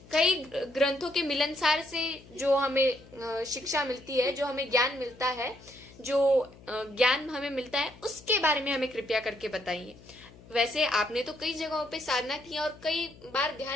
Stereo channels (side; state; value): left; noise; hum, 22 dB below the sound